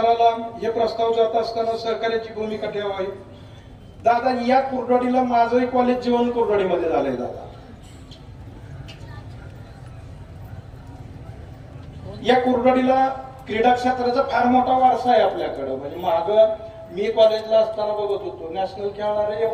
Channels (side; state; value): both; identical; correlation 1.00